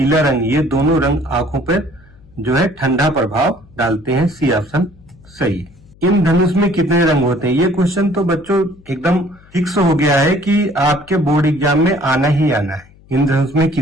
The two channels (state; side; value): noise; left; hum, 26 dB below the sound